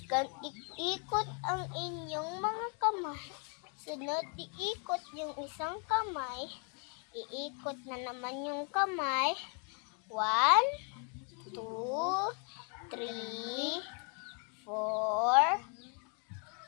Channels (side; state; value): right; quieter; 38.9 dB